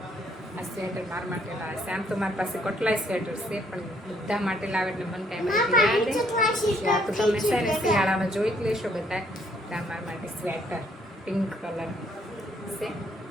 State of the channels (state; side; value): normal; both; correlation 0.67